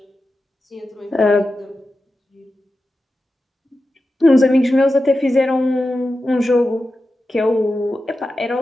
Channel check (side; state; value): both; normal; correlation 0.92